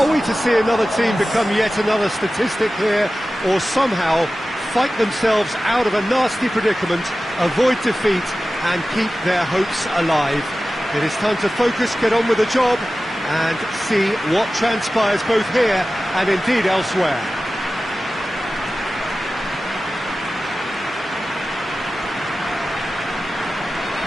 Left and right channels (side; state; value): both; normal; correlation 0.95